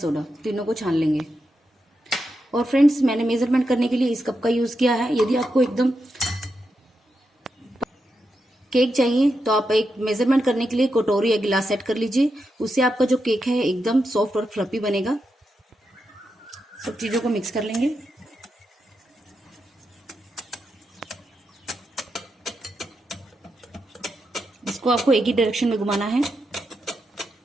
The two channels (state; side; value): normal; both; correlation 0.86